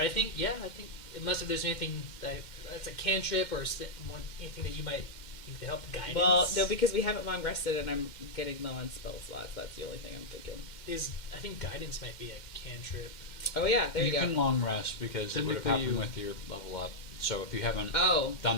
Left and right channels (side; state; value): right; late; 2.1 ms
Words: I think, unless if there's anything that's a cantrip or anything that you might think to help guidance. well, no, because we haven't long rested and I'm getting low on spell slots. That's the only thing I'm thinking. I think guidance might be a cantrip. Oh yeah, there you, You go. can long rest because it would have Technically happened you- with your level up. So if you haven't Oh,